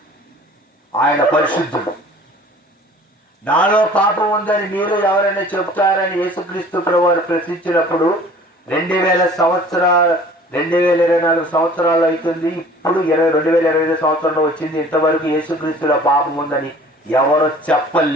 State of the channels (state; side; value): normal; both; correlation 0.48